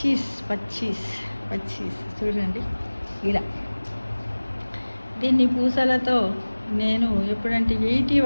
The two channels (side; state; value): both; inverted; correlation -1.00